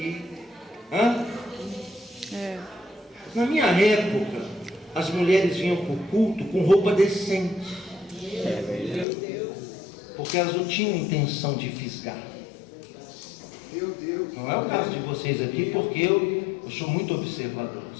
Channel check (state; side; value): drops out; right; at 9.1 s